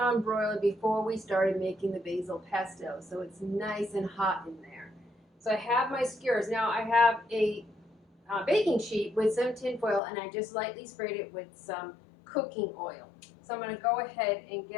broiler before we started making the basil pesto, so it's nice and hot in there. So I have my skewers. Now I have a baking sheet with some tin foil, and I just lightly sprayed it with some cooking oil. So I'm going to go ahead and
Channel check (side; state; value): right; drops out; at 10.0 s